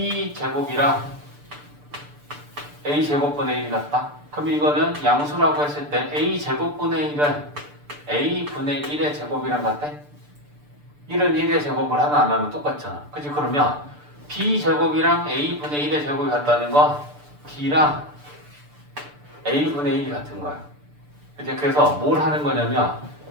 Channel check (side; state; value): left; late; 6.8 ms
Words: a제곱분의 1이 같다? 그럼 이거는 양수라고 했을 때 a제곱분의 1은 a분의 1의 제곱이랑 같아? 1은 1의 제곱을 하나 안 하면 똑같잖아. 그치? 그러면 b제곱이랑 a분의 1의 제곱이 같다는 건 b랑 a분의 1이 같은 거야. 그치? 그래서 뭘 하는 거냐면